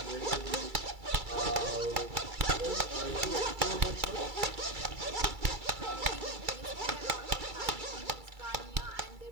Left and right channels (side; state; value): left; late; 2.3 ms